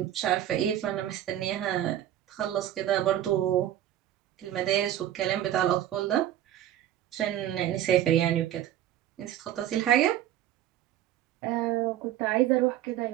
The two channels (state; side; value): quieter; left; 12.2 dB